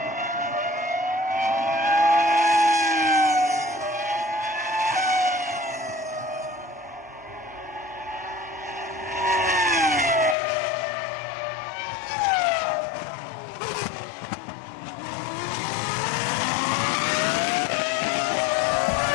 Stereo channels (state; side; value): drops out; right; at 10.4 s